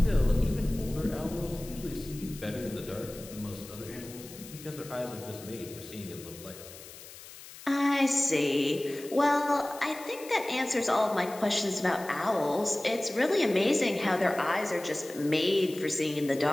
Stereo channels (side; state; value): left; noise; hiss, 16 dB below the sound